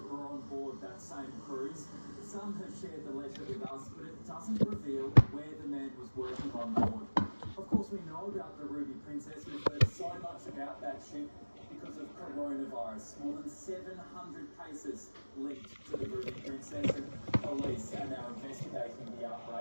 were on board that same cruise. Some have shared the letter with us, but it doesn't reveal where the man was working on board. Of course, we know about the Ruby Princess. We've heard so much about that ship because of coronavirus. More than 700 cases linked to the Ruby Princess, and police are now investigating the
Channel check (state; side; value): inverted; both; correlation -1.00